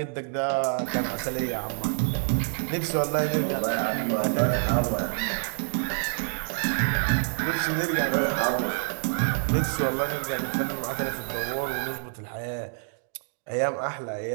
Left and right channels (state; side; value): silent; left; 60 dB below the other